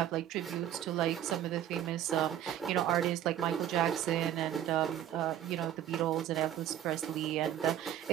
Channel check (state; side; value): quieter; left; 11.2 dB